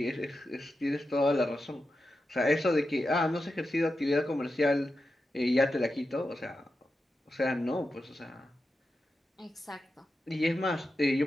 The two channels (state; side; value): normal; both; correlation 0.90